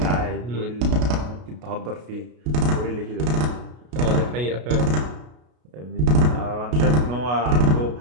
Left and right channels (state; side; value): late; left; 33 ms